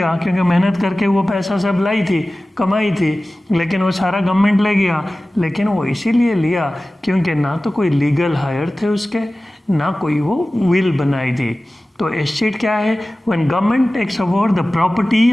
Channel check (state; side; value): normal; both; correlation 0.97